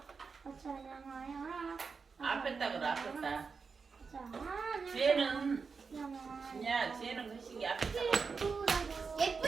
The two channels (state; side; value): quieter; left; 5.1 dB